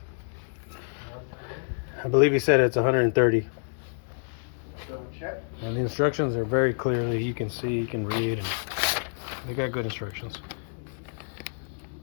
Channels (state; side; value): silent; right; digital silence